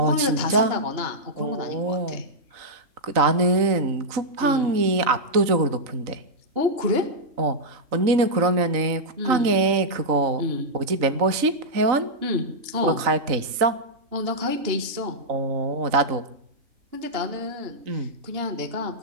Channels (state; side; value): late; left; 3.9 ms